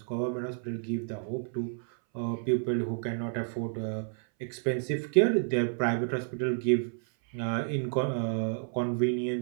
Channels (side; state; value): left; silent; 58 dB below the other